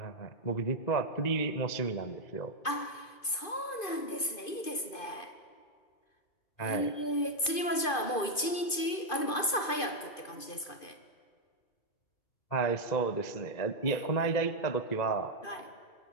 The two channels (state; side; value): late; right; 2.5 ms